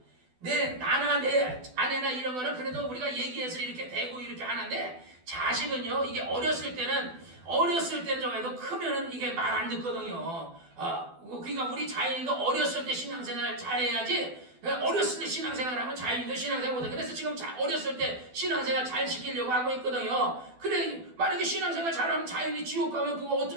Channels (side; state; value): left; late; 12 ms